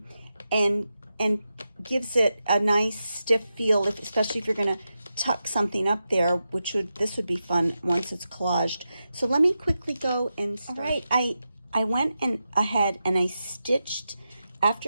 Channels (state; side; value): inverted; both; correlation -0.89